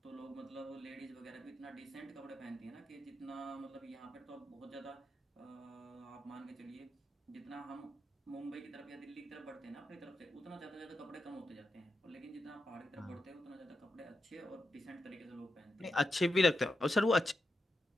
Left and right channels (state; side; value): normal; both; correlation 0.87